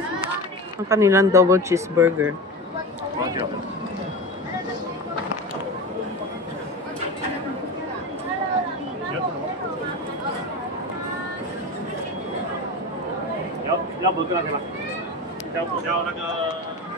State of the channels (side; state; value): both; normal; correlation 0.26